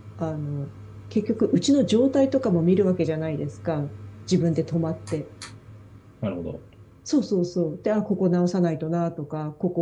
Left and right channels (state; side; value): identical; both; correlation 1.00